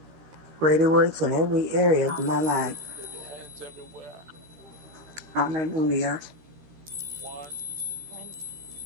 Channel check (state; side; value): late; left; 13 ms